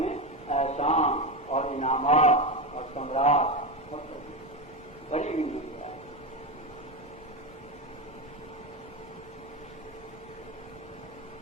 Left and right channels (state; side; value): normal; both; correlation 0.16